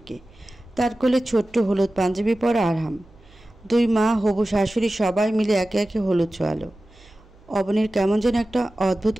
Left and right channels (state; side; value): noise; right; hum, 27 dB below the sound